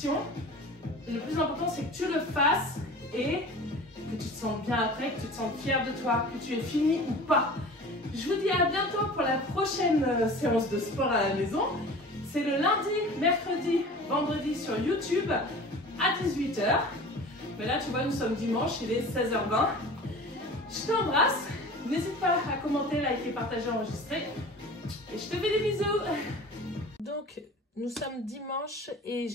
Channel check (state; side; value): normal; both; correlation 0.40